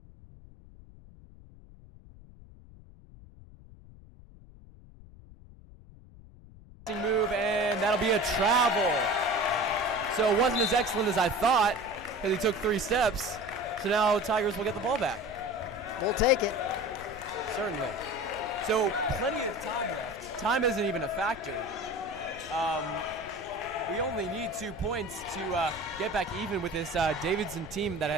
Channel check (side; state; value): left; noise; rumble, 20 dB below the sound